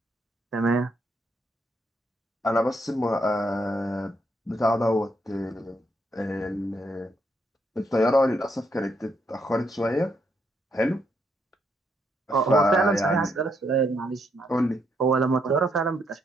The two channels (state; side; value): normal; both; correlation 0.76